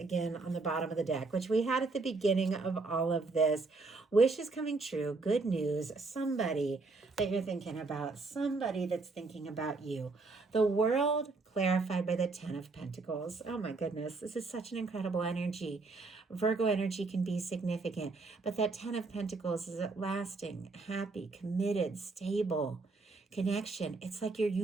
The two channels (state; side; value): quieter; left; 3.7 dB